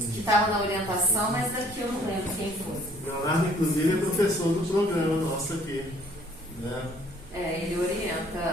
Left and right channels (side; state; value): both; normal; correlation 0.59